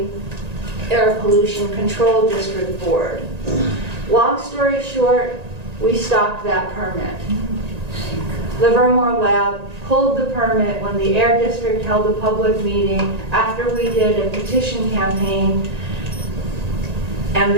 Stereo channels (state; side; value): late; left; 1.9 ms